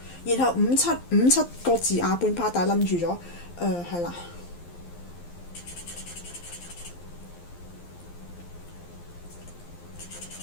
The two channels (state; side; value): late; right; 12 ms